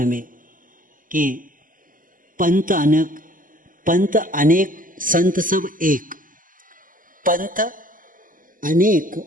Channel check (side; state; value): left; late; 0.39 ms